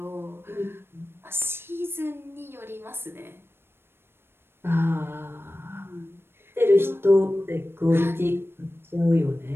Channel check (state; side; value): late; left; 0.11 ms